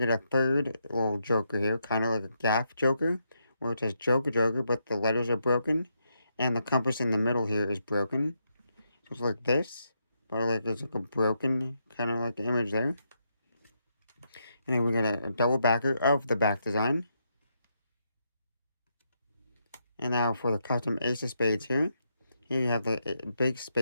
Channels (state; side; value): inverted; both; correlation -0.80